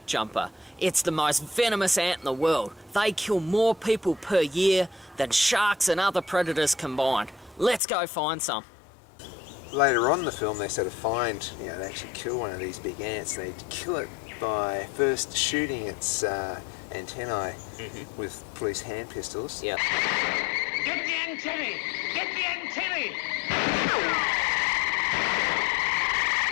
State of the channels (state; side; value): drops out; right; at 7.8 s